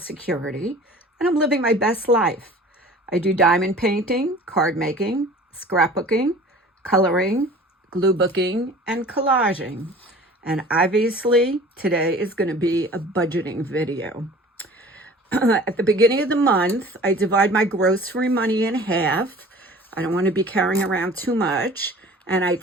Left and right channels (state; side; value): normal; both; correlation 0.45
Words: and I'm living my best life. I do diamond painting, card making, scrapbooking, coloring, glue booking, and collaging. And obviously today is going to be a budgeting video. At the beginning of the month, I divide my grocery money in half. I don't want to be carrying around too much. And I